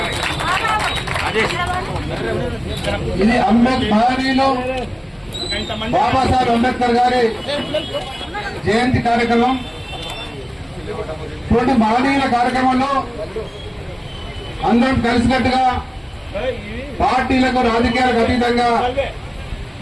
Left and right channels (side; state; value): both; identical; correlation 1.00